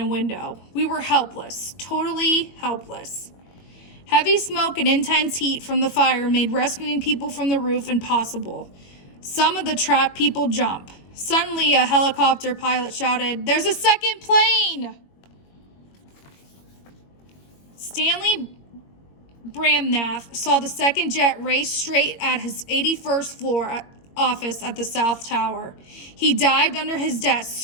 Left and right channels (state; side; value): late; right; 22 ms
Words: window. We were helpless, totally helpless. Heavy smoke and intense heat from the fire made rescuing people from the roof impossible. Some of the trapped people jumped. Suddenly, a helicopter pilot shouted, "There's a second plane!" Stanley Bramnath saw the second jet race straight at his 81st floor office at the South Tower. He dived under his desk,